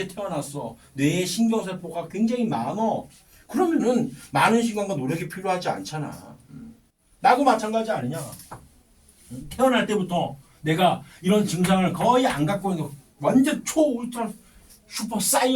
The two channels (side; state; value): both; identical; correlation 1.00